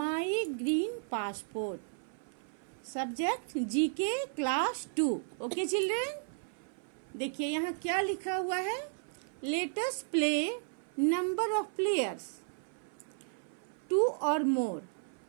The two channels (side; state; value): left; silent; 55 dB below the other